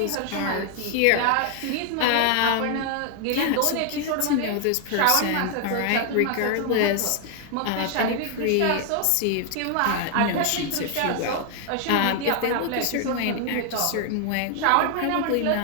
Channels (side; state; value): both; different; correlation 0.00